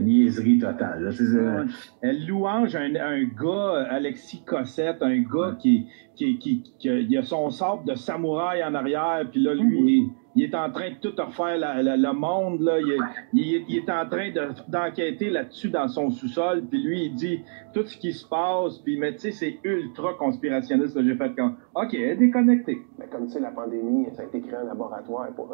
niaiserie totale. Là. Elle louange un gars, Alexis Cossette, un gars qui a son sabre de samouraï en arrière, puis là, lui, il est en train de tout refaire le monde, là. Il est en train d'enquêter là-dessus dans son sous-sol, puis lui, il dit tout ce qui se passe, puis mais tu sais, c'est ultra conspirationniste, là. J'ai fait comme, OK, déconnecté. Mais comme tu sais, la pandémie, ça a été créé en laboratoire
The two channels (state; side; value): silent; left; digital silence